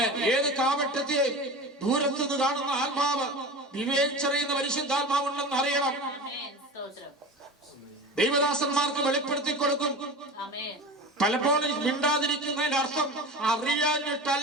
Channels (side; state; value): both; normal; correlation 0.31